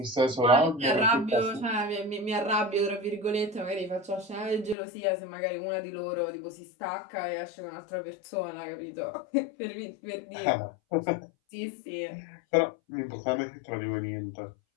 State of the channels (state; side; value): drops out; right; at 4.8 s